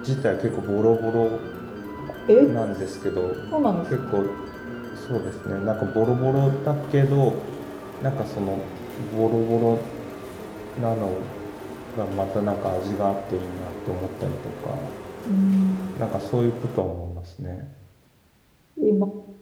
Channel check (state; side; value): identical; both; correlation 1.00